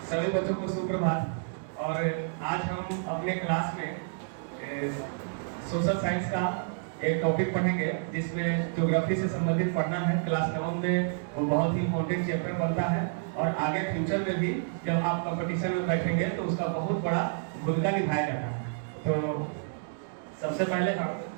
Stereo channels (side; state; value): left; silent; digital silence